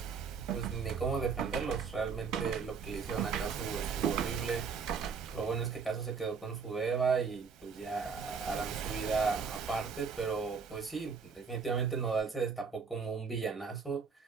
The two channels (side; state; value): left; quieter; 5.6 dB